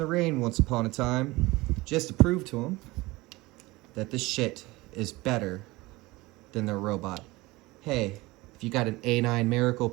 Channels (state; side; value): quieter; left; 21.2 dB